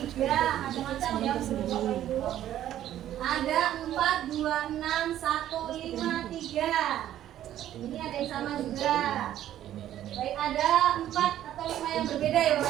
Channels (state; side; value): quieter; left; 12.0 dB